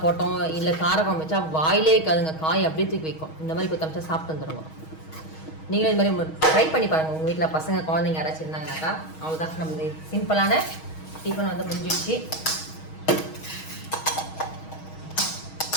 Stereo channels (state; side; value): late; right; 6.3 ms